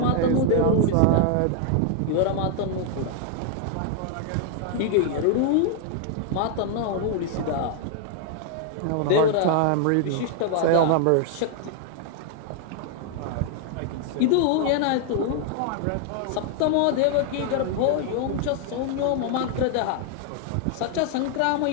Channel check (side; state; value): both; different; correlation 0.00